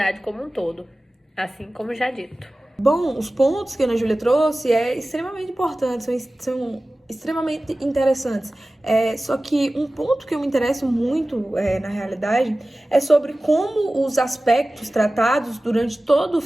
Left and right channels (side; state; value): both; normal; correlation 0.97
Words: como um todo, assim como já dito. Bom, os pontos que a Ana Júlia trouxe extremamente importantes, são extremamente interessantes. Só que um ponto que eu me interesso muito, na realidade, é sobre como os aspectos tratados durante todo o